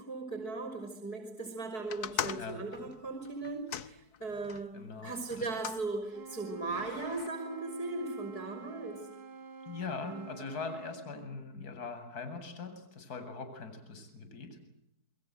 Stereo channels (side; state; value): right; late; 4.6 ms